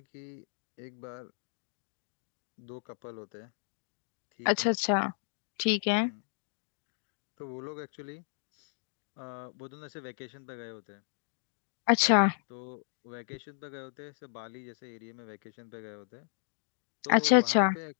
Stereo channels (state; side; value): silent; right; digital silence